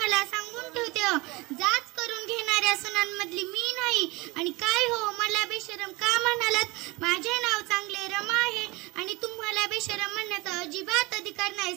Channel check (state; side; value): quieter; left; 23.8 dB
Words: सांगून ठेवते, जाच करून घेणाऱ्या सुनांमधली मी नाही. आणि काय हो, मला बेशरम का म्हणालात? माझे नाव चांगले रमा आहे आणि तुम्हाला बेशरम म्हणण्याचा अजिबात अधिकार नाही,